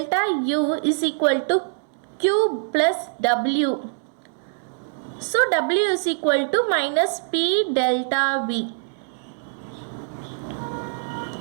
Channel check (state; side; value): silent; left; digital silence